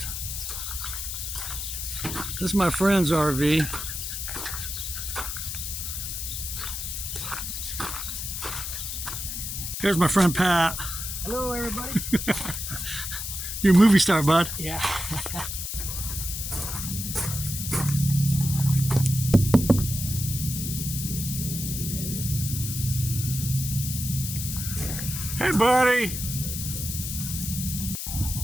This is my friend's RV. Here's my friend Pat. Hello, everybody. You're a movie star, bud. Yeah. Hey, buddy.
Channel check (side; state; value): left; noise; hiss, 5 dB below the sound